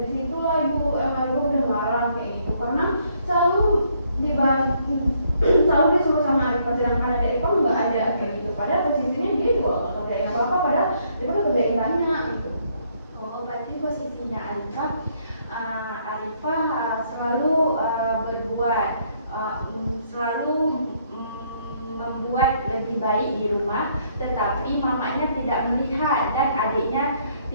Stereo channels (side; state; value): both; inverted; correlation -0.69